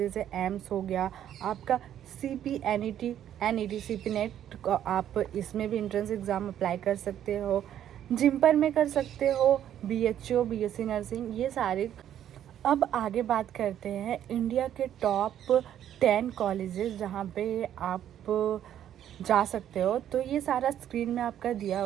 है। एम्स हो गया आपका, सीपी एनईटी सीपी नेट, आप इसमें भी एंट्रेंस एग्ज़ाम अप्लाई कर सकते हो। जिम्पर में कर सकते हो, बीएचओ बीएससी नर्सिंग, ये सारे। अब आगे बात करते हैं इंडिया के टॉप 10 कॉलेजेस जहाँ पे आप जा सकते हो। तो ये सारा स्क्रीन में आपका दिया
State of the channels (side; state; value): left; quieter; 10.7 dB